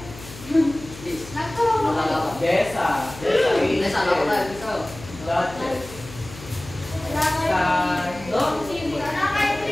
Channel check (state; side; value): noise; left; hum, 16 dB below the sound